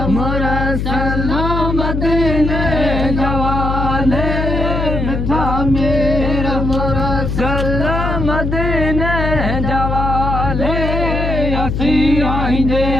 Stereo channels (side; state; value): left; noise; hum, 2 dB below the sound